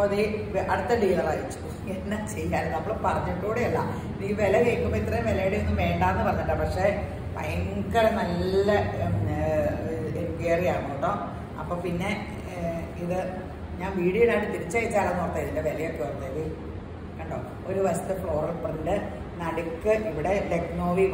അടുത്ത ഡീലർ അയച്ചു. എന്നാ ചെയ്യാൻ, നമ്മൾ പറഞ്ഞിട്ടൂടെയല്ല. ഈ വില കേൾക്കുമ്പോൾ ഇത്രയും വിലയുടെ ഒന്നും വേണ്ടാന്ന് പറഞ്ഞിട്ടാ. പക്ഷെ ഭയങ്കര നല്ല എൻക്വയറിയാണ് കേട്ടോ. അപ്പൊ പിന്നെ ഇത് ഞാൻ വീഡിയോയിലായിട്ട് തിരിച്ചയച്ചാലെന്ന് ഓർത്തത്, ഇതിന്റെ വിലയൊക്കെ ഓർത്തത് കണ്ടോ. ഒരു വശത്ത് ഫ്ലോറൽ പ്രിന്റ്, നടുക്ക് ഇവിടെ ലക്നോവി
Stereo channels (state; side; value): identical; both; correlation 1.00